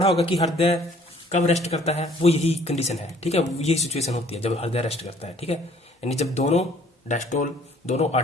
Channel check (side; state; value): both; normal; correlation 0.57